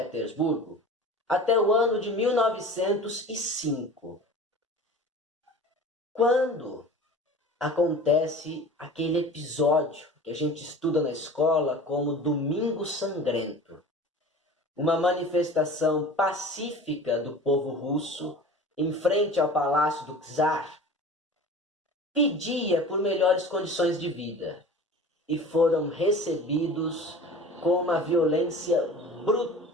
até o ano de 1905, quando acontece aquele episódio que a gente estuda na escola como Domingo Sangrento, uma manifestação pacífica do povo russo em frente ao palácio do czar, pedia por melhores condições de vida e foram recebidos com uma violência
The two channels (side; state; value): both; normal; correlation 0.39